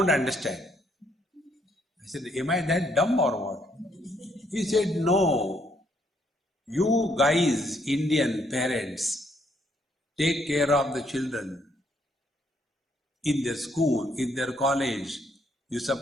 understand. I said, am I that dumb or what? He said, no. You guys, Indian parents, take care of the children in their school, in their college. You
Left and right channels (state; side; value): normal; both; correlation 0.71